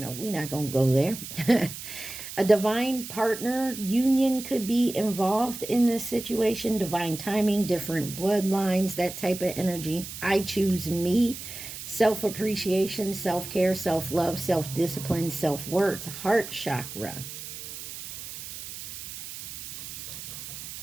we're not going to go there. A divine partner union could be involved in this situation. Divine timing, different bloodlines, that type of energy. I choose me. Self-appreciation, self-care, self-love, self-discipline, self-worth, heart chakra.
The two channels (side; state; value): right; noise; hiss, 10 dB below the sound